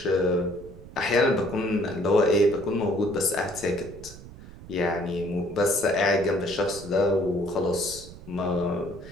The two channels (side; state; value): right; noise; rumble, 17 dB below the sound